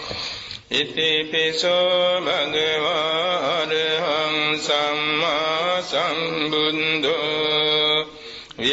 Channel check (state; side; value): identical; both; correlation 1.00